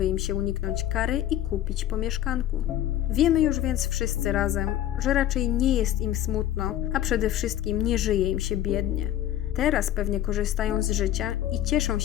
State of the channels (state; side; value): quieter; right; 12.4 dB